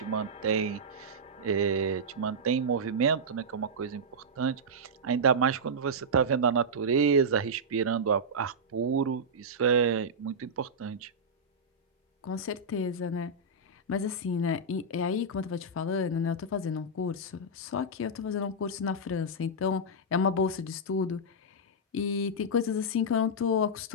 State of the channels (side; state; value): both; normal; correlation -0.10